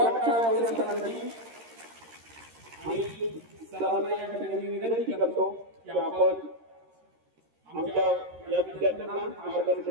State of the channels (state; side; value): late; left; 13 ms